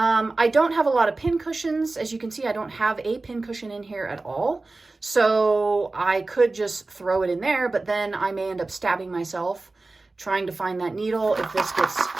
don't have a lot of pin cushions. As you can see, I don't have a pin cushion in here at all. So I could just throw it in there, but then I may end up stabbing myself trying to find that needle. If this gets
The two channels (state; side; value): quieter; left; 3.3 dB